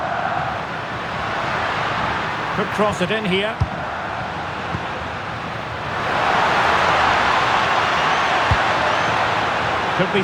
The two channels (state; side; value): identical; both; correlation 1.00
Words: Could cross it in here. Could be